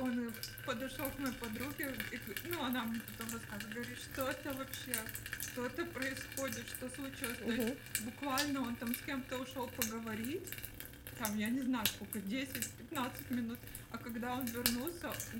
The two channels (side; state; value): both; identical; correlation 1.00